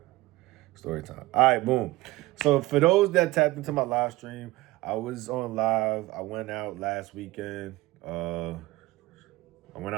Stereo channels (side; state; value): left; quieter; 19.0 dB